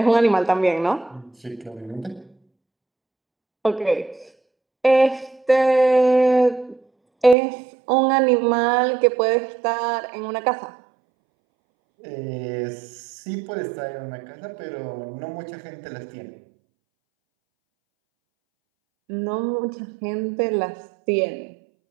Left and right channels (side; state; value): left; drops out; at 7.4 s